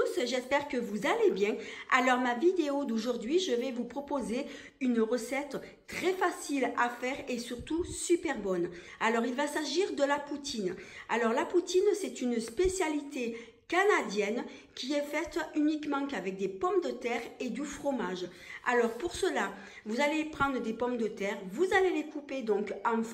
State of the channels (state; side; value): identical; both; correlation 1.00